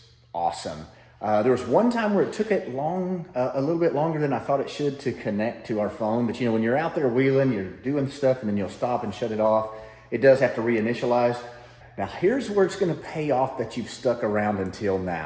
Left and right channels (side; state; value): both; identical; correlation 1.00